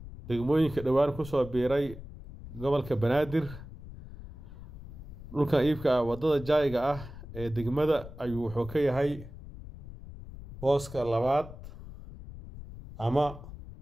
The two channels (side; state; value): left; noise; rumble, 14 dB below the sound